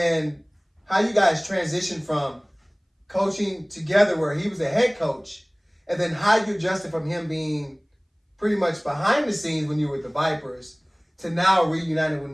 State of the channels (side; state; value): both; identical; correlation 1.00